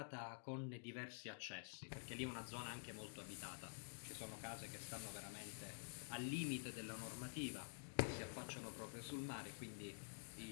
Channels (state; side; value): silent; right; digital silence